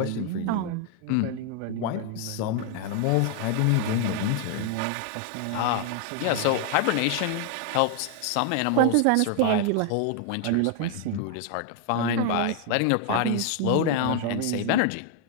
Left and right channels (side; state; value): both; different; correlation 0.00